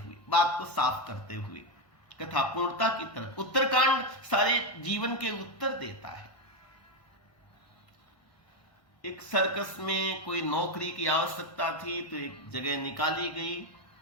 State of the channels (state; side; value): late; right; 1.1 ms